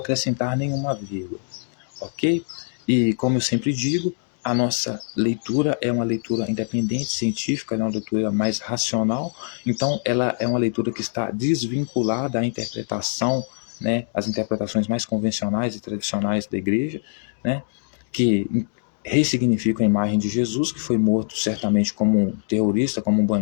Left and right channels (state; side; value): silent; right; digital silence